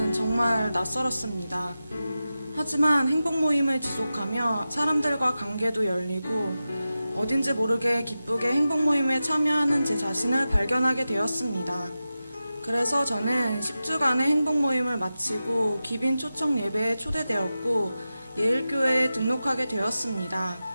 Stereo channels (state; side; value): inverted; both; correlation -0.93